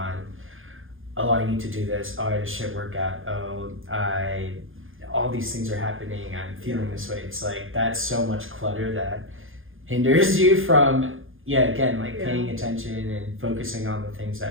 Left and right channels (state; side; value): late; left; 0.59 ms